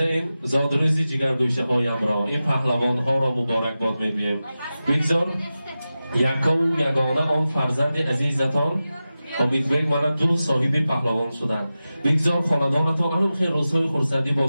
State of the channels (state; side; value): inverted; both; correlation -0.94